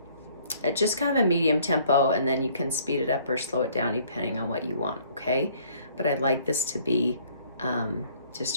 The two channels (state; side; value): inverted; both; correlation -0.59